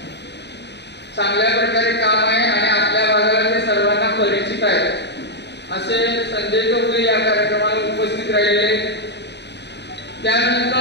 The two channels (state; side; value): late; right; 0.50 ms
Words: चांगल्या प्रकारे काम आहे आणि आपल्या भागाला ते सर्वांना परिचित आहे। असे संजय चौगुले या कार्यक्रमाला उपस्थित राहिले।